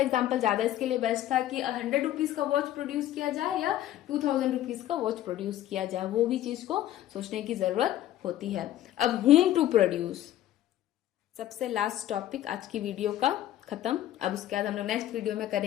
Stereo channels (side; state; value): right; quieter; 13.0 dB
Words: एग्जांपल ज्यादा इसके लिए बेस्ट था कि 100 रुपीज का वॉच प्रोड्यूस किया जाए या 2000 रुपीज का वॉच प्रोड्यूस किया जाए, वो भी चीज को सोचने की जरूरत होती है। अब होम टू प्रोड्यूस, सबसे लास्ट टॉपिक आज की वीडियो का खत्म। अब उसके बाद हम लोग नेक्स्ट वीडियो में